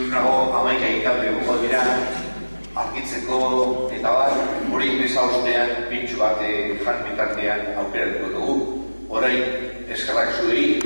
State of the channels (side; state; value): both; inverted; correlation -1.00